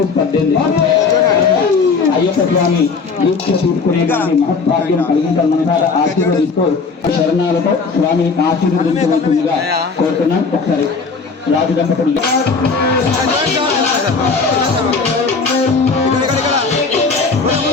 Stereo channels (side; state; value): right; quieter; 4.7 dB